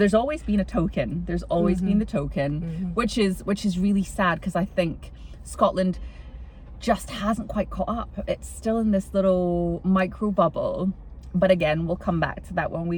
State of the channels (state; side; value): identical; both; correlation 1.00